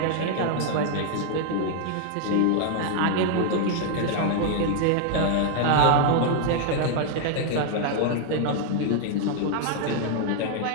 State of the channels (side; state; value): both; different; correlation 0.00